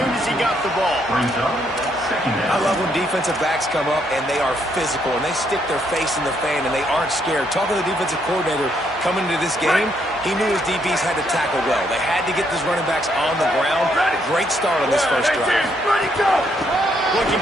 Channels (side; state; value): both; normal; correlation 0.73